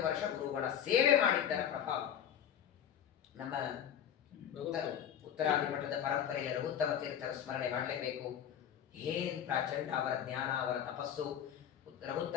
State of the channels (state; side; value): quieter; right; 9.4 dB